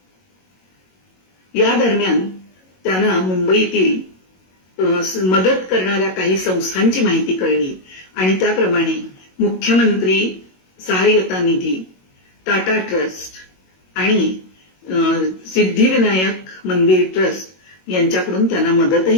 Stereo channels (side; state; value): right; late; 22 ms